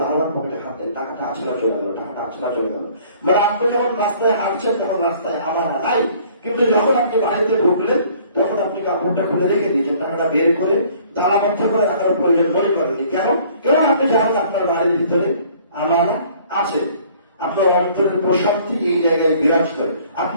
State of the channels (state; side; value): inverted; both; correlation -0.56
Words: বারবার পকেটে হাত দেন, টাকাটা আছে না চলে গেল, টাকাটা আছে না চলে গেল। মানে আপনি যখন রাস্তায় হাঁটছেন তখন রাস্তায় আমার নাই, কিন্তু যখন আপনি বাড়িতে ঢুকলেন তখন আপনি কাপড়টা খুলে রেখে দিয়েছেন, টাকাটা বের করে তালাবদ্ধ করে রাখার প্রয়োজন মনে করেননি। কেন আপনি জানেন আপনার বাড়ির ভিতরে আমার আছে। আপনার অন্তরের প্রশান্তি এই জায়গায় বিরাজ করে,